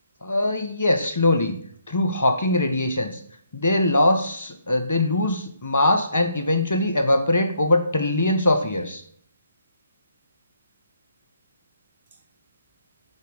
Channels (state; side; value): inverted; both; correlation -0.73